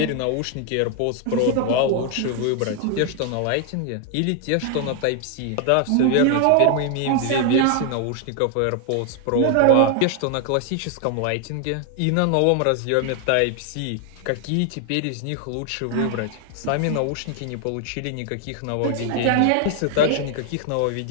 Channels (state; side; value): different; both; correlation 0.00